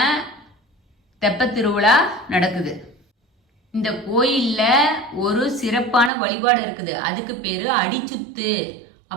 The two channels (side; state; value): left; drops out; at 6.1 s